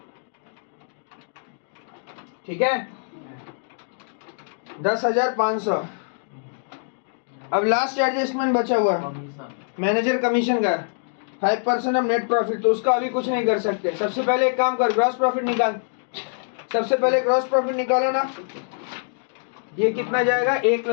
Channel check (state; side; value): silent; right; digital silence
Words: ठीक है 10,500। अब लास्ट एडजस्टमेंट बचा हुआ कमीशन मैनेजर कमीशन का 5% ऑफ नेट प्रॉफिट, तो उसका अभी कुछ नहीं कर सकते। सबसे पहले एक काम कर, ग्रॉस प्रॉफिट निकाल, सबसे पहले ग्रॉस प्रॉफिट निकालो ना, ये कितना जाएगा